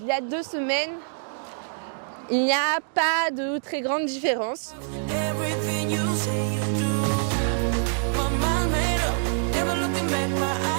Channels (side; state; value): left; silent; digital silence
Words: y a 2 semaines, il n'y a pas de très grande différence.